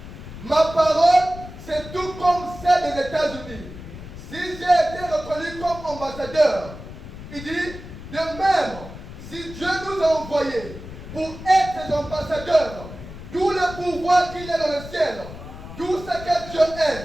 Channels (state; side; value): noise; left; rumble, 13 dB below the sound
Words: ma parole, c'est tout comme celle des États-Unis. Si j'ai été reconnu comme ambassadeur, il dit, de même, si Dieu nous a envoyés pour être des ambassadeurs, tout le pouvoir qu'il y a dans le ciel, tout ce que Dieu